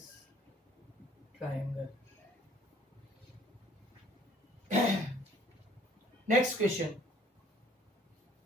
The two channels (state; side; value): normal; both; correlation 0.57